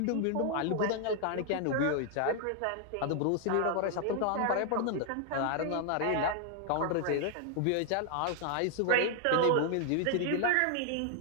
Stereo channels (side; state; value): both; different; correlation 0.00